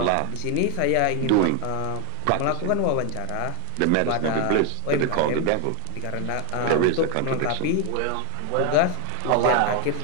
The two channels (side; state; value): both; different; correlation 0.01